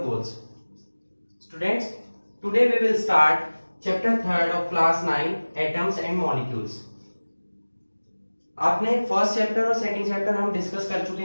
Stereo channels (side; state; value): both; inverted; correlation -1.00